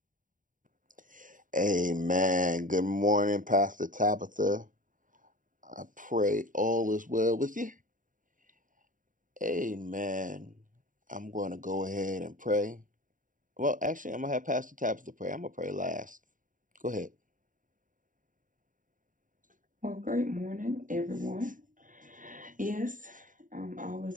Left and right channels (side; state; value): left; late; 0.38 ms